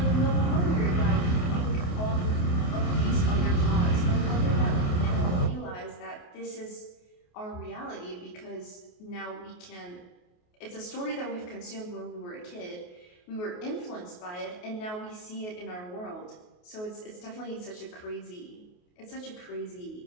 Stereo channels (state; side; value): late; right; 28 ms